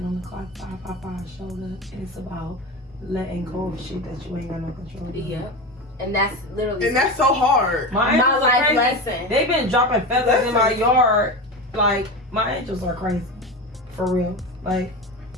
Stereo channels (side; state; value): both; normal; correlation 0.24